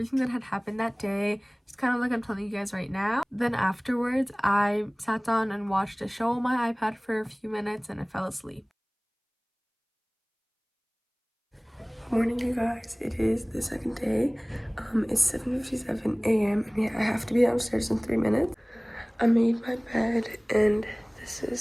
that had happened that day, just kind of like I'm telling you guys right now. Then afterwards, I sat down and watched a show on my iPad for a few minutes and I fell asleep. Morning, you guys. It is the second day. It's 7:57 a.m. and yeah, I have to be downstairs in 3 minutes. I made my bed and this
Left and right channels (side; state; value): both; identical; correlation 1.00